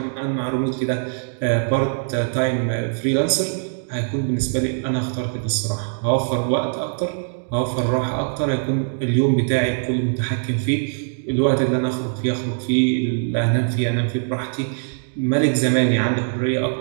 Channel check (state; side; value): silent; left; digital silence